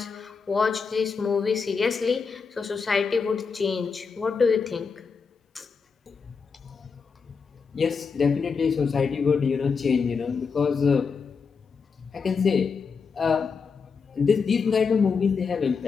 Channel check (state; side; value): quieter; right; 5.4 dB